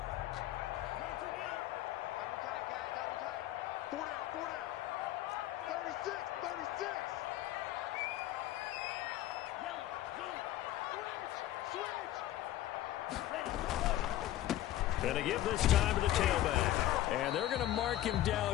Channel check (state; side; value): quieter; right; 13.9 dB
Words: Going to give this time to the tailback. And they're going to mark him